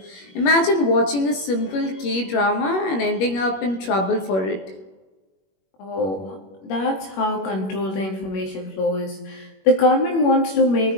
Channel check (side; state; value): right; late; 21 ms